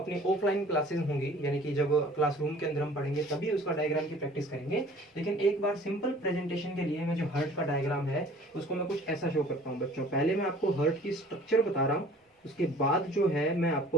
ऑफलाइन क्लासेस होंगी यानी कि जब क्लासरूम के अंदर हम पढ़ेंगे तभी उसका डायग्राम की प्रैक्टिस करेंगे। लेकिन एक बार सिंपल प्रेजेंटेशन के लिए मैं जो हार्ट का डायग्राम है उसको मैं कुछ ऐसा शो करता हूँ बच्चों। पहले मैं आपको हार्ट की स्ट्रक्चर बता रहा हूँ, उसके बाद जो है मैं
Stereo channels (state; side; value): normal; both; correlation 0.50